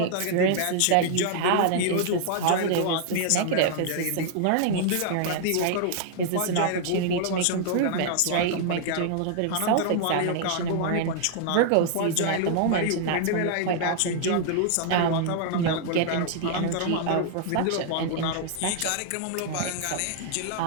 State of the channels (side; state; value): both; different; correlation -0.01